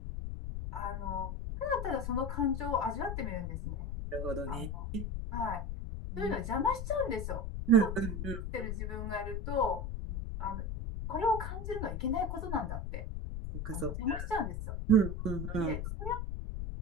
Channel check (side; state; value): left; noise; rumble, 3 dB below the sound